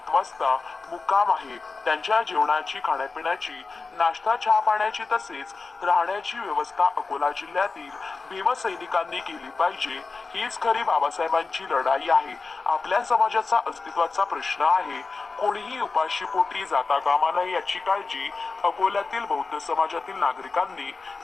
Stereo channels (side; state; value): right; quieter; 4.2 dB